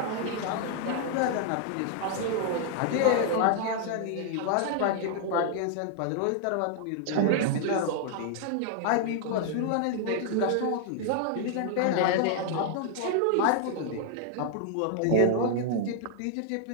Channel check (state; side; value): different; both; correlation 0.00